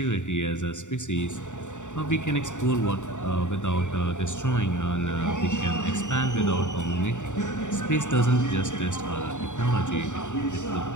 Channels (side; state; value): right; late; 0.85 ms